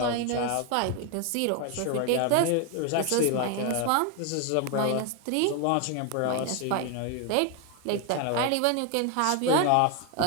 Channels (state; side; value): different; both; correlation 0.01